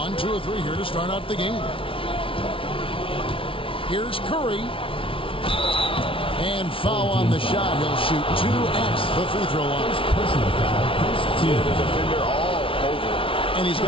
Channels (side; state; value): right; late; 0.25 ms